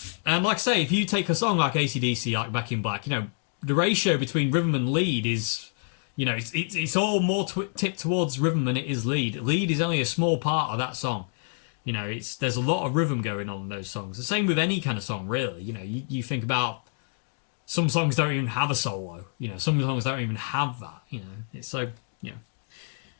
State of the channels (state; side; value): silent; right; 60 dB below the other